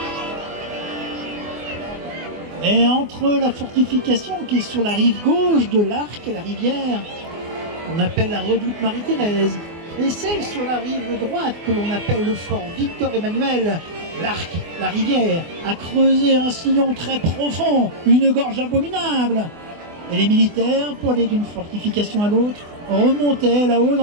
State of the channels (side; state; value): left; late; 24 ms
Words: Mais entre la fortification qui est sur la rive gauche de l'Arc, la rivière, qu'on appelle la redoute Marie-Thérèse, et celle sur la rive droite que l'on appelle le fort Victor-Emmanuel, l'Arc, la rivière, a creusé un sillon très profond, une gorge abominable. Et les militaires, pour aller d'une fortification à l'autre, remontaient là-haut